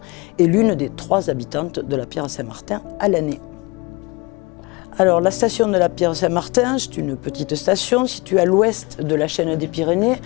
et l'une des 3 habitantes de la Pierre-Saint-Martin à l'année. Alors la station de la Pierre-Saint-Martin, c'est une petite station située à l'ouest de la chaîne des Pyrénées,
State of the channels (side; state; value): right; quieter; 25.9 dB